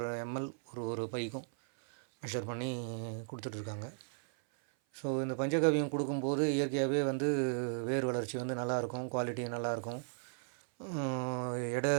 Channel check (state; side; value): silent; left; 54 dB below the other